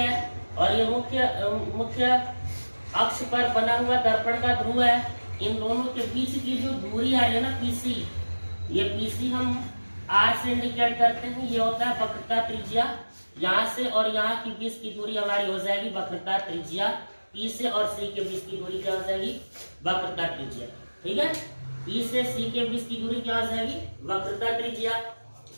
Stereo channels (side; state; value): both; inverted; correlation -1.00